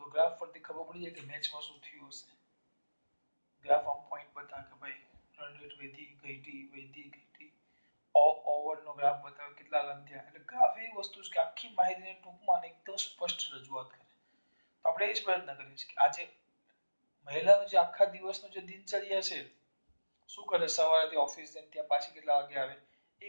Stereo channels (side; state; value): both; inverted; correlation -1.00